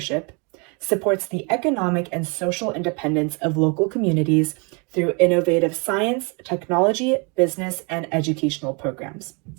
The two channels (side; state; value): left; quieter; 33.2 dB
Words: supports the economic and social independence of local communities through innovative science, technology, business, and educational programs.